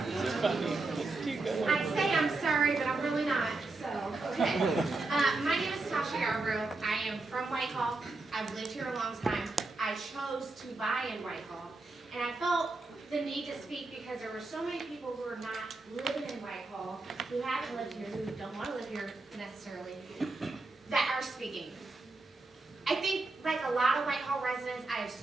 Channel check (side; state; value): left; quieter; 3.3 dB